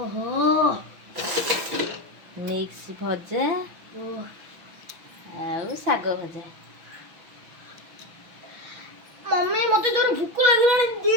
ମିକ୍ସ ଭଜା ଓ ଆଉ ଶାଗ ଭଜା। ମମ୍ମି ମତେ ଜୋର ଭୋକ ଲାଗିଲାଣି ଦେ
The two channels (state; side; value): late; left; 6.1 ms